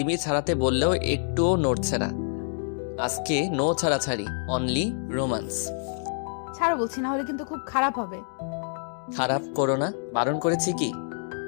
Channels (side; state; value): right; silent; digital silence